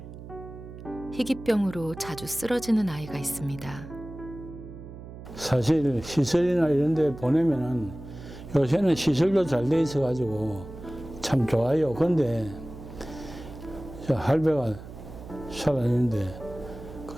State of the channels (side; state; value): right; noise; hum, 13 dB below the sound